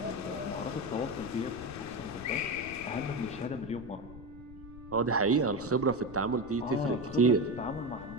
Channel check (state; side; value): noise; left; rumble, 16 dB below the sound